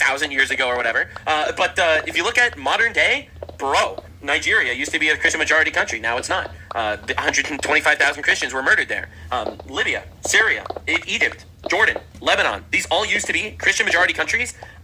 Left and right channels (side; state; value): both; identical; correlation 1.00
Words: years ago or whatever. But if you look at modern day, bro, Nigeria used to be a Christian majority country. Now it's not. 125,000 Christians were murdered there. Libya, Syria, Egypt, Jordan, Lebanon. These all used to be Christian majority countries.